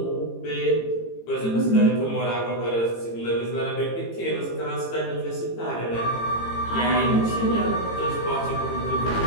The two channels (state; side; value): late; right; 18 ms